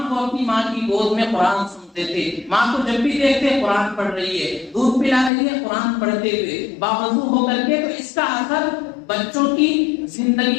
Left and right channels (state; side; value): drops out; right; at 5.3 s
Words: وہ اپنی ماں کی گود میں قرآن سنتے تھے. ماں کو جب بھی دیکھتے قرآن پڑھ رہی ہے, دودھ پلا رہی ہے, قرآن پڑھتے ہوئے باوضو ہو کر کے, تو اس کا اثر بچوں کی